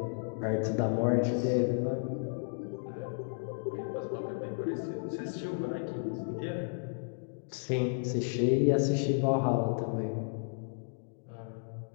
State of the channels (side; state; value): right; silent; digital silence